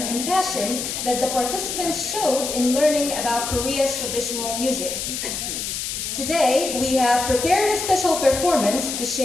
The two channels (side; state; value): left; noise; hiss, 4 dB below the sound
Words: and passion that the participants showed in learning about Korea's traditional music. Today, we have prepared a special performance to